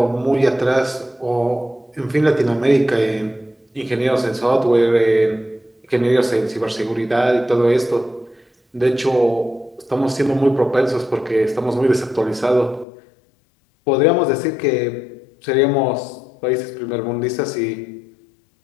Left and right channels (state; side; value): drops out; right; at 12.9 s